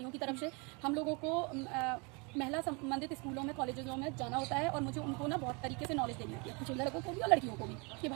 की तरफ से। हम लोगों को महिला संबंधित स्कूलों में, कॉलेजों में जाना होता है, और मुझे उनको ना बहुत तरीके से नॉलेज देनी होती है, लड़कों को भी और लड़कियों को भी, कि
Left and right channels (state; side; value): quieter; left; 31.0 dB